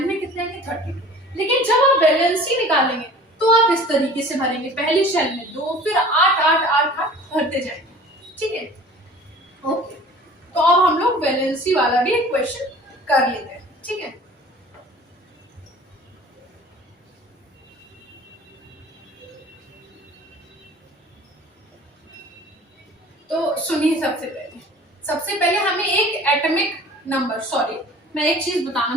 में कितने आएंगे, 32। लेकिन जब आप वैलेंसी निकालेंगे तो आप इस तरीके से भरेंगे, पहली शेल में 2, फिर 8 8 8 8 भरते जाएंगे, ठीक है, ओके। तो अब हम लोग वैलेंसी वाला भी एक क्वेश्चन कर लेते हैं, ठीक है। तो सुनिए, सबसे पहले हमें एक एटॉमिक नंबर, सॉरी मैं एक चीज बताना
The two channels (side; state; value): both; normal; correlation 0.45